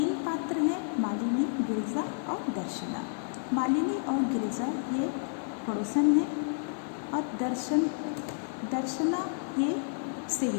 पात्र हैं, मालिनी, गिरिजा और दर्शना। मालिनी और गिरिजा ये पड़ोसन हैं और दर्शना ये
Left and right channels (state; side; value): silent; right; digital silence